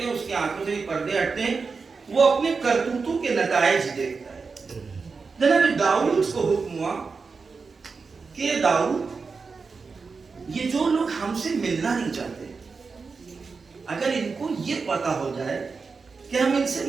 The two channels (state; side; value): quieter; left; 4.8 dB